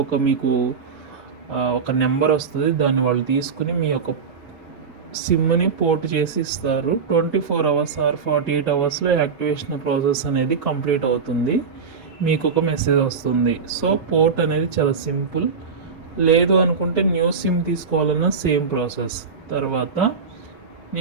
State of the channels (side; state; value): left; quieter; 5.6 dB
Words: మీకు ఒక నెంబర్ వస్తుంది. దాన్ని వాళ్ళు తీసుకుని మీ యొక్క సిమ్ని పోర్ట్ చేసి ఇస్తారు. 24 అవర్స్ ఆర్ 48 అవర్స్లో యాక్టివేషన్ ప్రాసెస్ అనేది కంప్లీట్ అవుతుంది. మీకు ఒక మెసేజ్ వస్తుంది. సో పోర్ట్ అనేది చాలా సింపుల్. లేదు అనుకుంటే న్యూ సిమ్ తీసుకోవాలన్నా సేమ్ ప్రాసెస్. తర్వాత